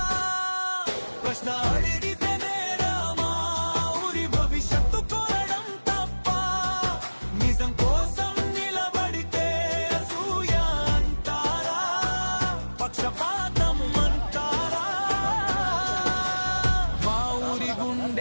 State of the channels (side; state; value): both; inverted; correlation -1.00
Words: ప్రశ్న అడిగితేనే రామా, ఊరి భవిష్యత్తు కోరడం తప్ప, నిజం కోసం నిలబడితే అసూయ అంటారా, పక్షపాతం అంటారా? మా ఊరి